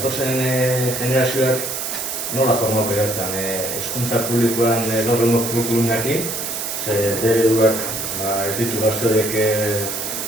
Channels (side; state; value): right; noise; hiss, 4 dB below the sound